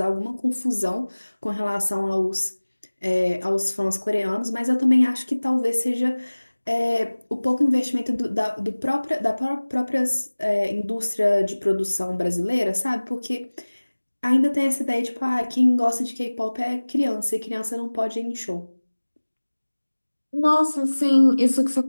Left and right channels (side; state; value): both; inverted; correlation -1.00